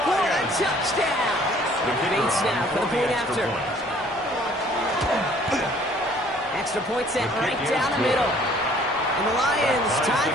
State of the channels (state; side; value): normal; both; correlation 0.57